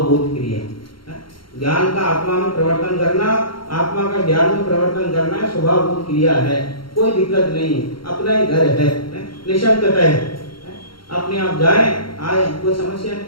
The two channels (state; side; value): late; right; 0.73 ms